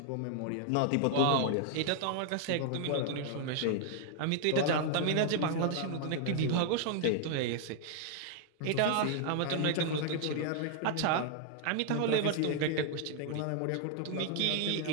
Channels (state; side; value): different; both; correlation 0.00